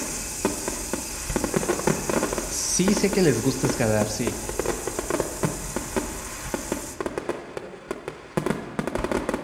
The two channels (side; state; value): both; identical; correlation 1.00